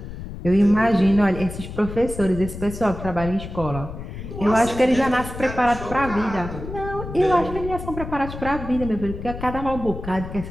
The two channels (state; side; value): noise; left; rumble, 9 dB below the sound